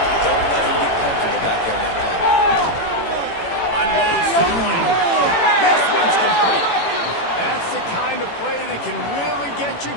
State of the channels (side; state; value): right; late; 18 ms